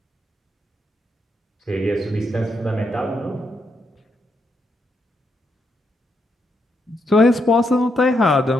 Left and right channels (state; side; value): normal; both; correlation 0.80